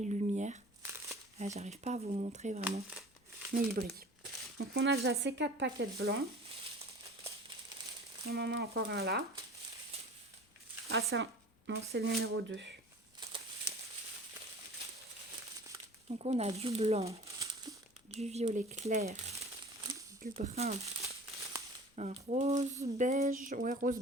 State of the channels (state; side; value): normal; both; correlation 0.42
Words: Là j'arrive pas à vous montrer vraiment. Mais ils brillent. Donc on a déjà ces 4 paquets de blanc. On en a encore un là. Ah ça, non c'est le numéro 2. Donc on a du blanc, du violet clair, du brun, un rose beige, ouais rose